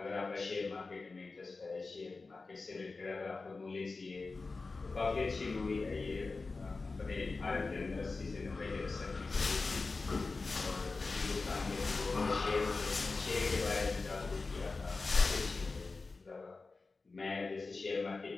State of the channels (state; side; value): quieter; right; 3.9 dB